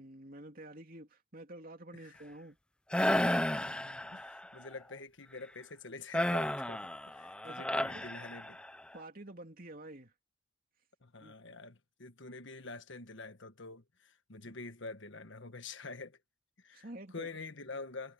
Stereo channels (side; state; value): both; normal; correlation 0.81